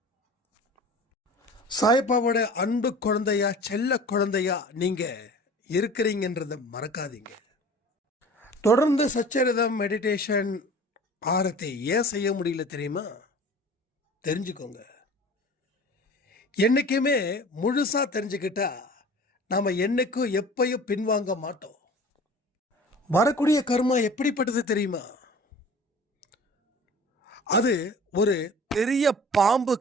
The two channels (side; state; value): both; normal; correlation 0.42